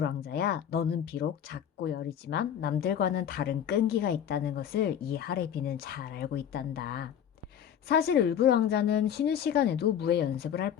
왕자야, 너는 비록 작고 여리지만 남들과는 다른 끈기가 있다는 것을 이 하레비는 잘 알고 있단다. 사실 을불 왕자는 쉬는 시간에도 무예 연습을 할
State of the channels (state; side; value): quieter; right; 9.3 dB